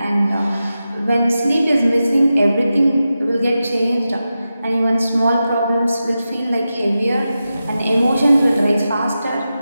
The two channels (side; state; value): both; inverted; correlation -0.91